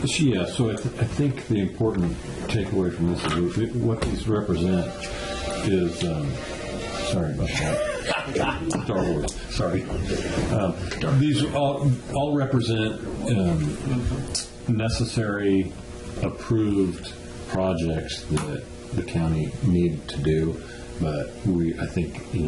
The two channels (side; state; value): both; identical; correlation 1.00